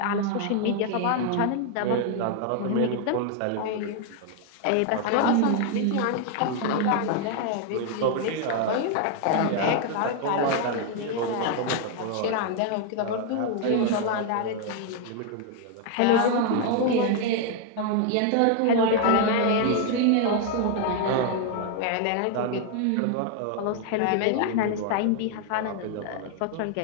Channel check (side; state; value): both; different; correlation 0.00